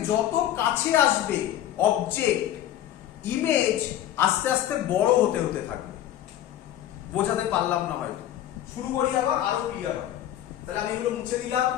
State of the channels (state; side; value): quieter; right; 12.1 dB